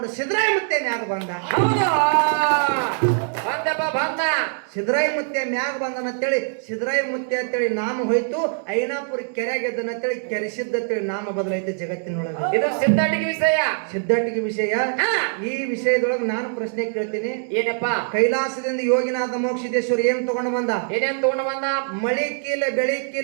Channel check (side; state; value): left; silent; 64 dB below the other